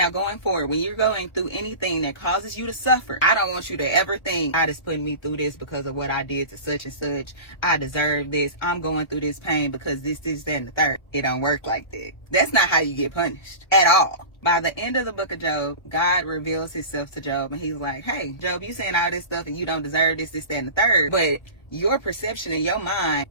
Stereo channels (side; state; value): right; late; 1.3 ms